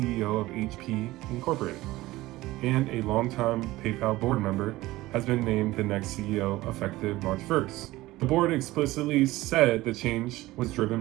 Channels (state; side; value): quieter; left; 18.0 dB